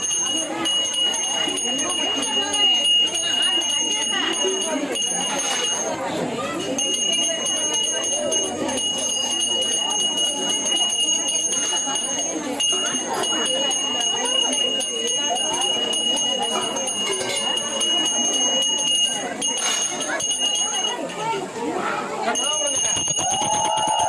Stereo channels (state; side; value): identical; both; correlation 1.00